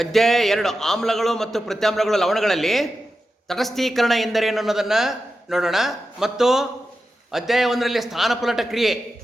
2 ಆಮ್ಲಗಳು ಮತ್ತು ಪ್ರತ್ಯಾಮ್ಲಗಳು ಲವಣಗಳಲ್ಲಿ ತಟಸ್ಥೀಕರಣ ಎಂದರೇನು ಅನ್ನೋದನ್ನು ನೋಡೋಣ. ಮತ್ತು ಅಧ್ಯಾಯ 1ರಲ್ಲಿ ಸ್ಥಾನಪಲ್ಲಟ ಕ್ರಿಯೆ,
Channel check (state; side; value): normal; both; correlation 0.91